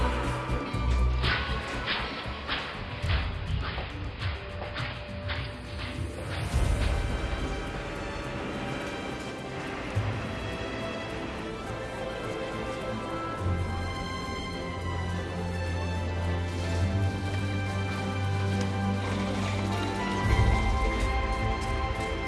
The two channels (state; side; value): identical; both; correlation 1.00